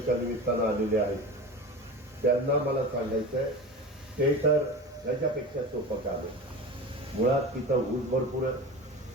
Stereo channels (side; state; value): both; normal; correlation 0.31